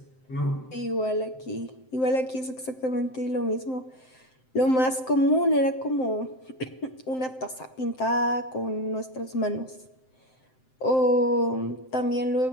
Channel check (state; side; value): late; right; 7.7 ms